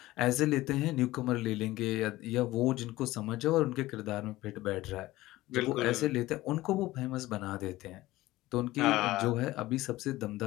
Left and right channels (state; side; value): quieter; right; 17.6 dB